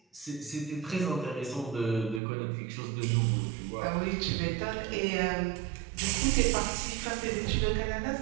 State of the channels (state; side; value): drops out; left; at 2.2 s